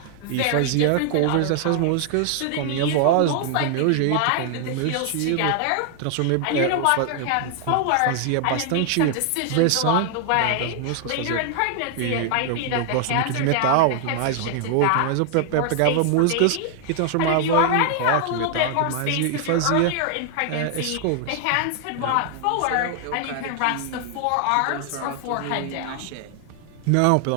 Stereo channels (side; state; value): both; different; correlation 0.00